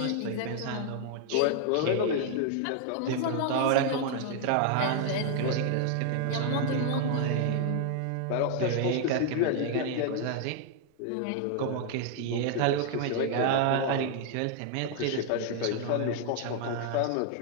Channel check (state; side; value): different; both; correlation 0.00